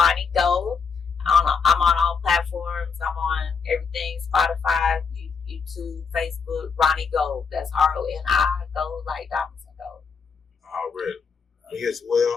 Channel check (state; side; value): quieter; right; 5.7 dB